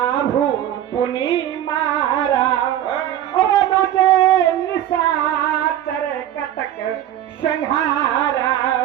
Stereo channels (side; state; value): left; quieter; 11.9 dB